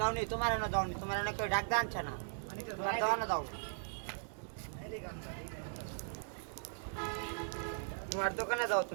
নি তোমার না যাও নি, তোমার না কেউ ডাক দাঁড়াচ্ছে না, তোমার দোকানে যাও, তোমার দোকানে যাও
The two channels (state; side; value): silent; left; digital silence